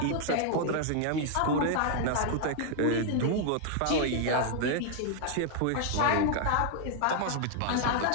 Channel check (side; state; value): both; different; correlation 0.00